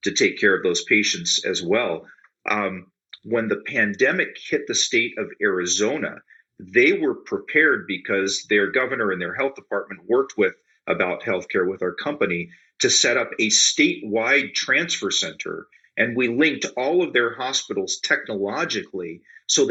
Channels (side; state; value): both; identical; correlation 1.00